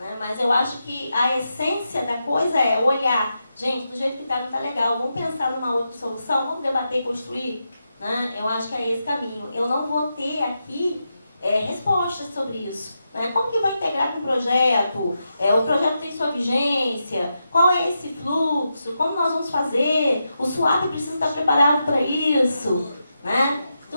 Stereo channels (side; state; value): both; inverted; correlation -0.86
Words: Mas eu acho que a essência da coisa é olhar. Gente, do jeito que está, não está legal. Vamos pensar numa outra solução? Vamos debater e construir? Né? Eu acho que é esse caminho. Eu não vou ter aqui respostas sobre isso. Né? Como que vai integrar com o projeto? O projeto tem sua vigência? Qual é esse fluxo? Como nós vamos fazer? O SUAP precisa estar preparado para isso. Né?